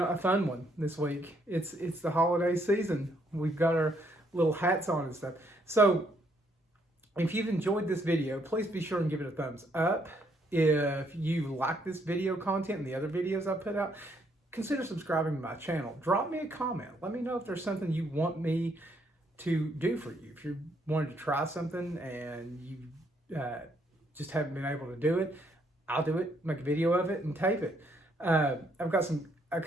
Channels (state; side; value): normal; both; correlation 0.71